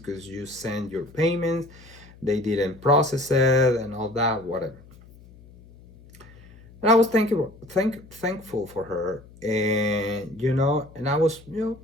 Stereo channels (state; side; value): noise; left; hum, 23 dB below the sound